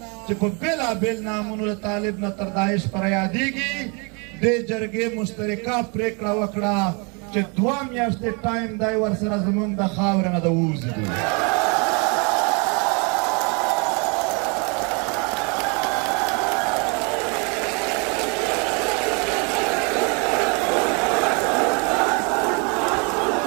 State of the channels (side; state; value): left; quieter; 33.1 dB